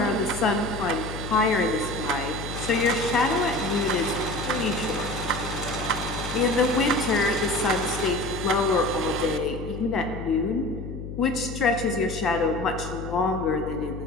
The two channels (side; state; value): left; noise; hum, 9 dB below the sound